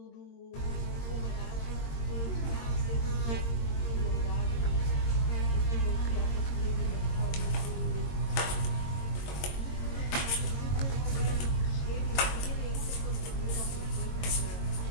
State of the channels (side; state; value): right; late; 22 ms